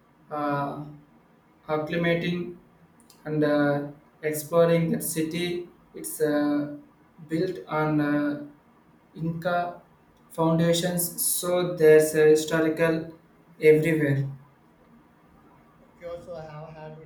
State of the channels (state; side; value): identical; both; correlation 1.00